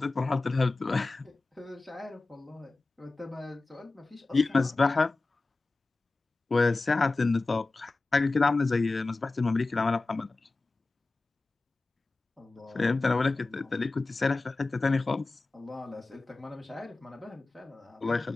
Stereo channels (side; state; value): right; quieter; 3.4 dB